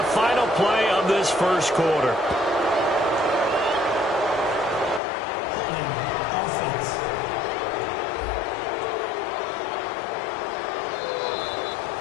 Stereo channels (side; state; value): right; drops out; at 5.0 s